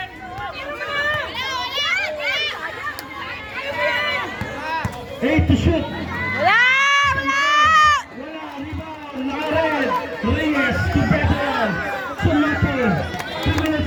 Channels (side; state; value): both; identical; correlation 1.00